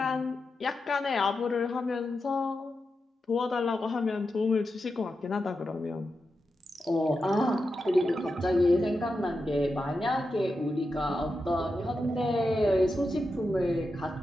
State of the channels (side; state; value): both; normal; correlation 0.89